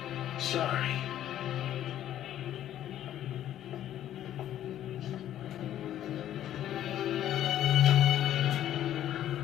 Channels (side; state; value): right; quieter; 11.8 dB